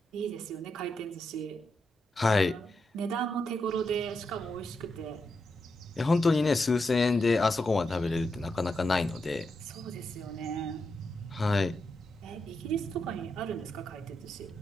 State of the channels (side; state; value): both; normal; correlation 0.85